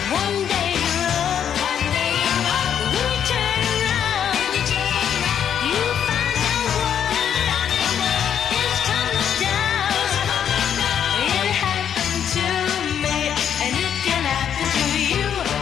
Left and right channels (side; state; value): right; quieter; 8.8 dB